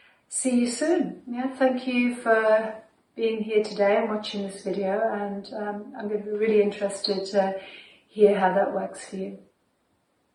see you soon. Thank you for being here today and watching this video, and I'm going to be really interested to hear how that works for you.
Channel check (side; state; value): both; identical; correlation 1.00